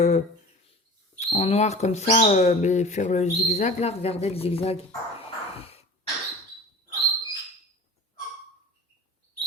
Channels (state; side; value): normal; both; correlation 0.40